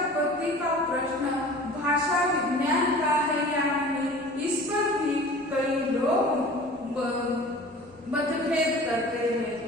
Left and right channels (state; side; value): normal; both; correlation 0.42